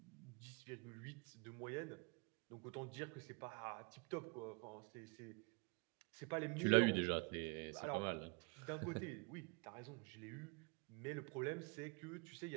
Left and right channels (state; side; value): quieter; left; 32.4 dB